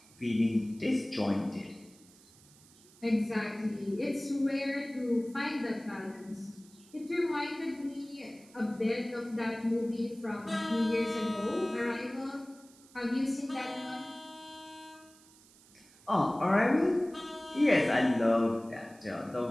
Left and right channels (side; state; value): right; noise; hiss, 25 dB below the sound